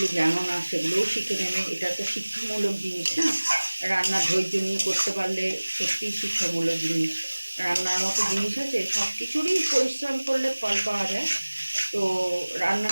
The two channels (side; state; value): both; inverted; correlation -1.00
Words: জানো না সেগুলোও শিখে নেবে। এটা তো শিক্ষামূলক জিনিস না, রান্নার ধৈর্য নিয়ে করতে পারলে সত্যিই শিক্ষামূলক জিনিস। রান্নার মতো জিনিস আছে, সব কিছুরই পরিশ্রম করলে ফল পাওয়া যায়। তো